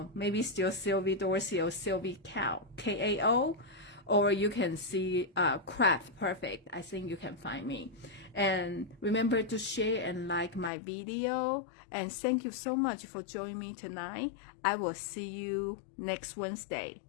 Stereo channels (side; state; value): right; drops out; at 10.7 s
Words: maybe still Sylvie Dorsey or Sylvie Kao, Kao, or you can see Craft Perfect. I think you can find me. And remember to share and like my video. And thank you so much for joining me tonight. I will see you next Wednesday.